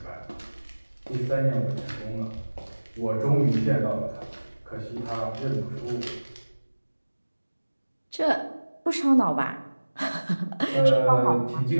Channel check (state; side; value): inverted; both; correlation -1.00